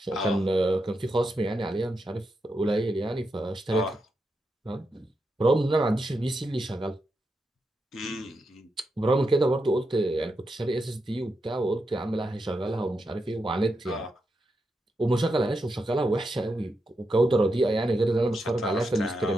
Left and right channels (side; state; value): both; normal; correlation 0.86